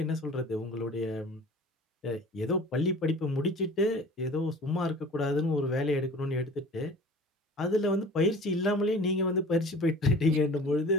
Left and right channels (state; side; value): normal; both; correlation 0.43